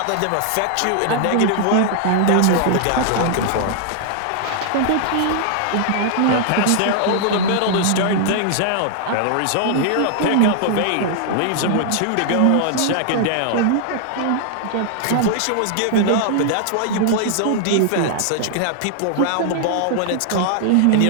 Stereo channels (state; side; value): different; both; correlation -0.01